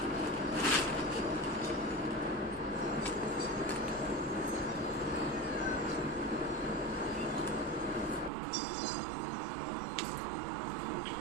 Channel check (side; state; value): left; drops out; at 8.3 s